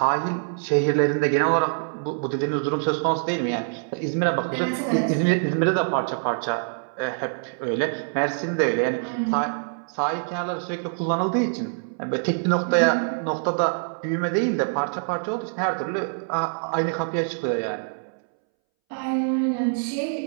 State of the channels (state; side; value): silent; left; 62 dB below the other